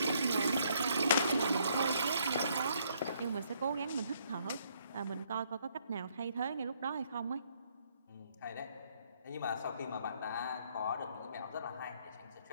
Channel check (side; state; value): both; inverted; correlation -0.69